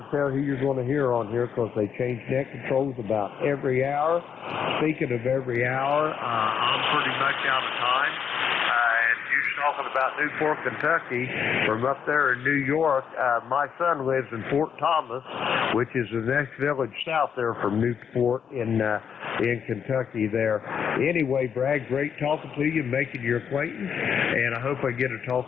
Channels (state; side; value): quieter; right; 7.5 dB